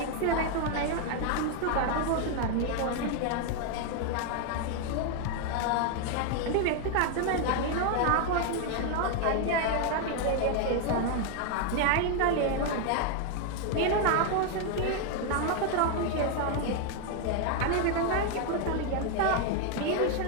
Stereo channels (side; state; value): both; different; correlation 0.01